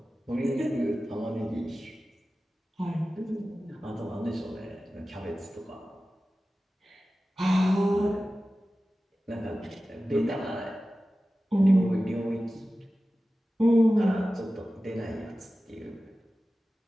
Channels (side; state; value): both; normal; correlation 0.95